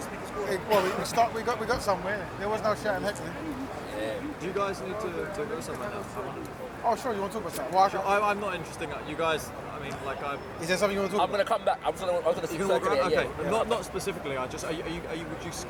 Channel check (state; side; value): identical; both; correlation 1.00